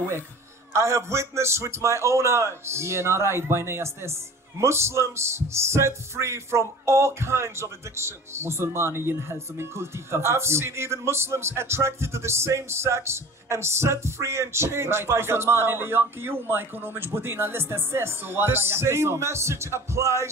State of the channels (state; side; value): normal; both; correlation 0.41